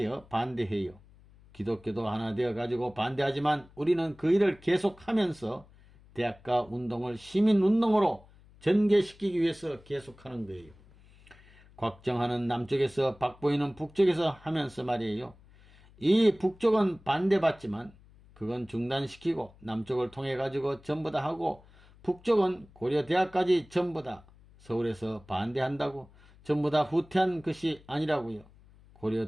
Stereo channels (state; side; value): noise; left; hum, 25 dB below the sound